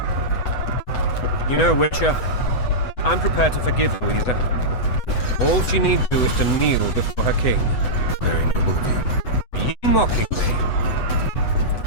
You know, Witcher, I'm prepared to forgive Louisa. All she need do is to kneel before her king. Very noble of you. Are you mocking me?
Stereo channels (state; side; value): late; right; 8.0 ms